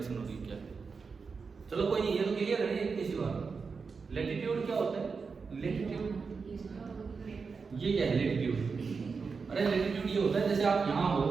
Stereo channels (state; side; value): quieter; left; 5.0 dB